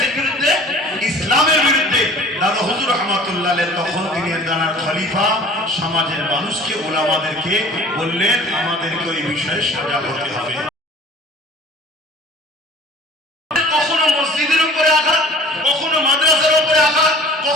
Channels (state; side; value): normal; both; correlation 0.46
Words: বিরুদ্ধে? ইসলামের বিরুদ্ধে। দাদা হুজুর রহমাতুল্লাহ আলাইহি তখন তিনি দানার খলিফা সমাজের মানুষকে, ওলামাদেরকে বললেন, আমাদেরকে ওই বিষয়ে সজাগ হতে হবে। কখনো মসজিদের উপরে আঘাত, কখনো মাদ্রাসার উপরে আঘাত,